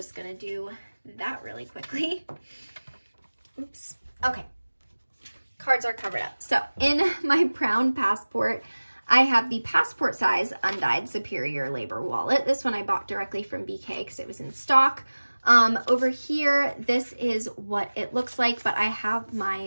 going to do that really quickly. Oops. Okay. Cards are covered up. So in my brown passport, I have the passport size undyed Superior Labor wallet. This one I bought directly from BK because it was in stock. Over here, this is what it looks like, but I have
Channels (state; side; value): inverted; both; correlation -1.00